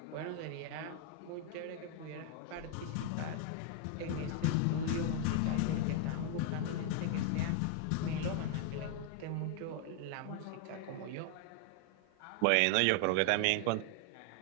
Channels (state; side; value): different; both; correlation 0.00